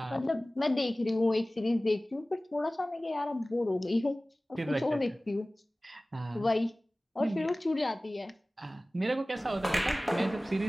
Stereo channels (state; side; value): normal; both; correlation 0.98